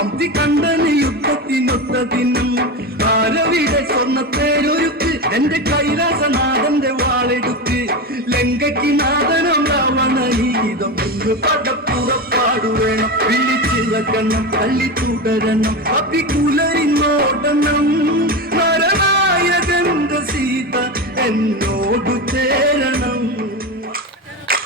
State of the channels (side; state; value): both; normal; correlation 0.20